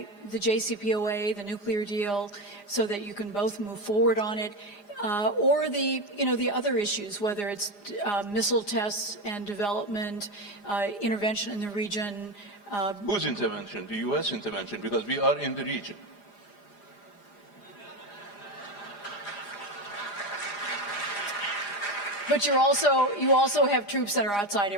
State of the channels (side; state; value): right; late; 4.9 ms